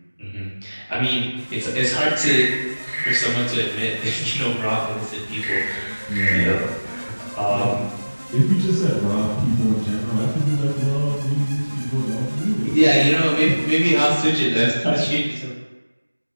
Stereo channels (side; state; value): both; inverted; correlation -1.00